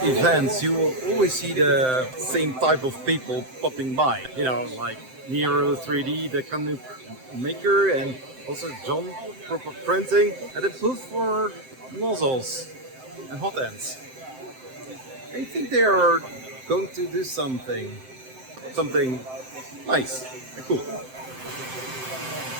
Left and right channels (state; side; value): late; left; 7.7 ms